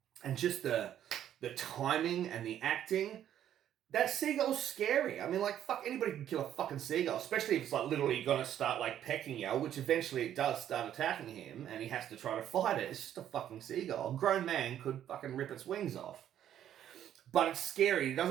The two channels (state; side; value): quieter; left; 10.7 dB